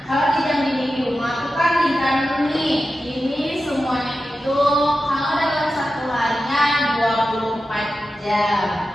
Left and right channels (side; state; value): both; normal; correlation 0.92